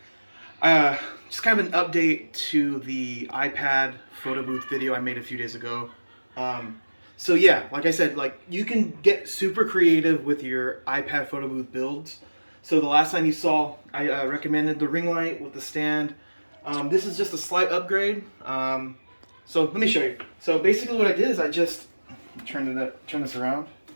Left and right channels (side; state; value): both; inverted; correlation -1.00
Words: just kind of an update to the iPad photo booth video I made a few days ago. So yeah, like I said, you can get super creative with your iPad photo booth builds. So the last time you saw, I recommended the ring light with the stand. This is just a slight upgrade. So let me show you. So basically what I did is I just turn this around.